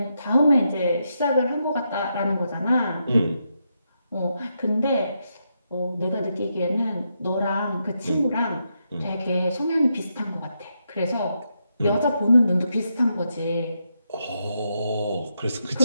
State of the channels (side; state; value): both; inverted; correlation -0.82